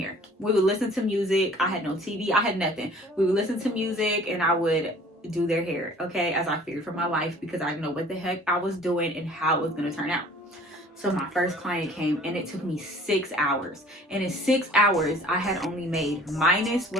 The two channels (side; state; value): both; normal; correlation 0.51